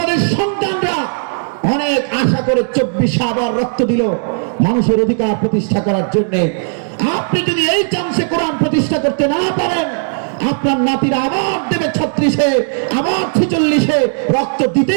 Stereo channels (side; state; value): left; silent; 65 dB below the other